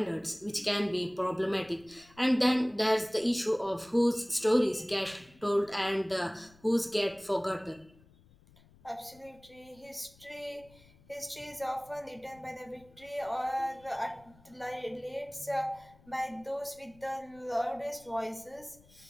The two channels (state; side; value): noise; left; rumble, 26 dB below the sound